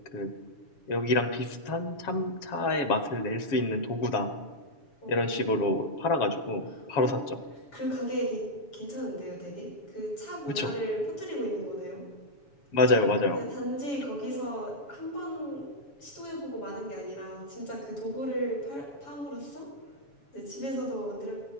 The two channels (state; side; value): late; right; 7.1 ms